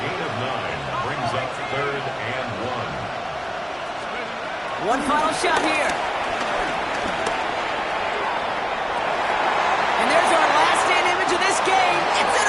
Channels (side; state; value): both; identical; correlation 1.00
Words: of 9 brings up 3rd and 1. One final shot here. And there's our last stand image of this game. It's